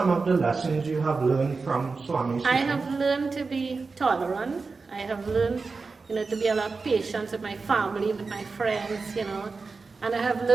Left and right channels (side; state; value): left; quieter; 4.3 dB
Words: of the lessons you have learned from Swami's I teaching? have learned to be tolerant. I have learned, to be a lot patient with my family, with my friends, And I have